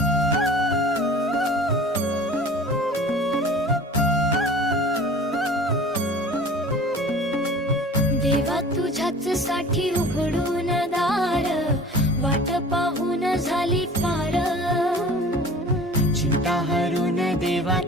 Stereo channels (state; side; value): normal; both; correlation 0.43